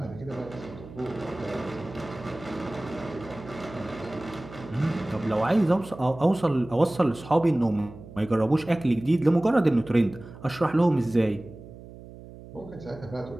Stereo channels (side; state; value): right; noise; hum, 16 dB below the sound